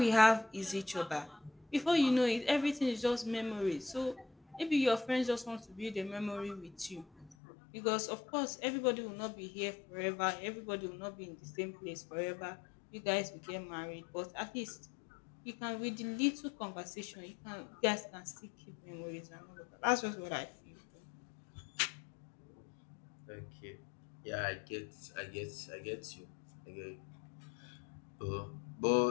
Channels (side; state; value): right; drops out; at 7.4 s